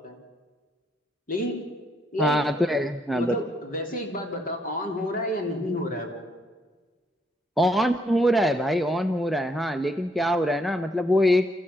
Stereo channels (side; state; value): both; normal; correlation 0.73